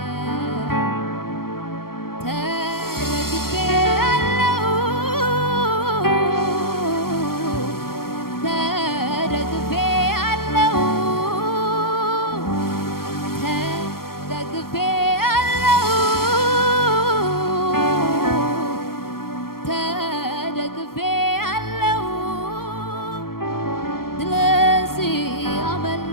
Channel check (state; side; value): late; right; 0.93 ms